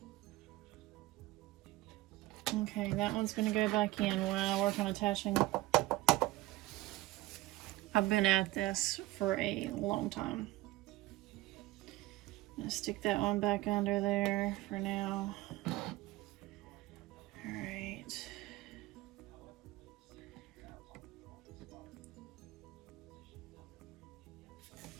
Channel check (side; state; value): left; quieter; 18.6 dB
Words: Okay, that one's gonna go back in when I work on attaching. I've been at this for a long time. I'm gonna stick that one back under there for now. All right.